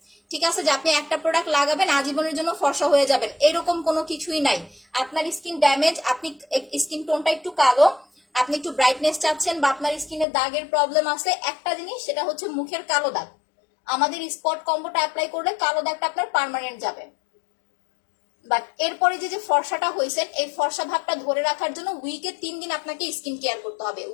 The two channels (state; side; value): drops out; right; at 10.2 s